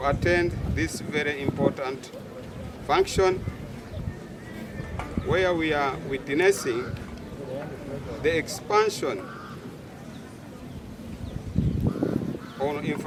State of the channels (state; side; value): identical; both; correlation 1.00